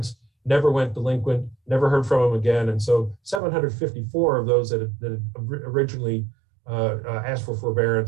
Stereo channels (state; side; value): drops out; left; at 3.4 s